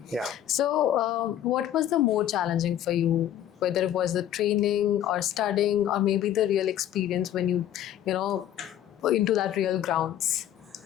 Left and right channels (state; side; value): quieter; right; 11.4 dB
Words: Yeah. So what was the more challenging for you? Whether it was the training or studying or maybe the real experience when you into that real grounds?